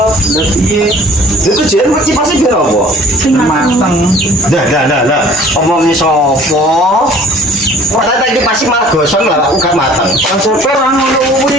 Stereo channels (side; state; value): both; normal; correlation 0.50